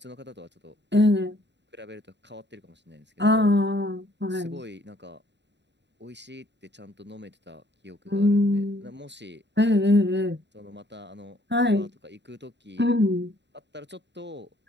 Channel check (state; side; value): late; left; 0.51 ms